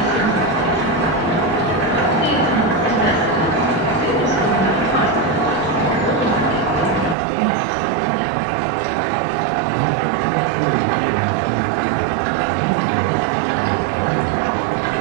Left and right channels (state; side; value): drops out; left; at 7.2 s